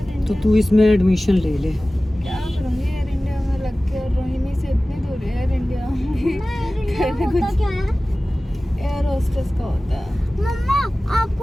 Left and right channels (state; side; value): normal; both; correlation 0.97